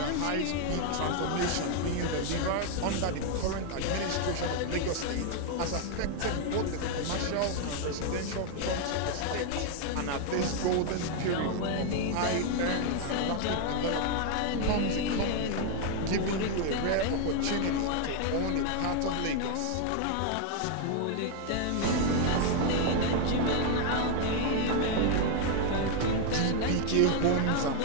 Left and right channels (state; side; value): different; both; correlation 0.00